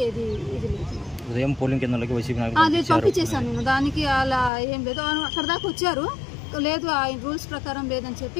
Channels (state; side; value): drops out; right; at 4.5 s